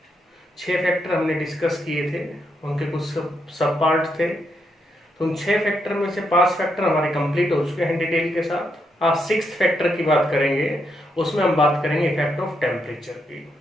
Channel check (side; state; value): both; normal; correlation 0.79